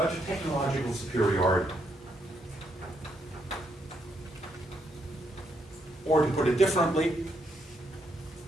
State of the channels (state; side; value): normal; both; correlation 0.76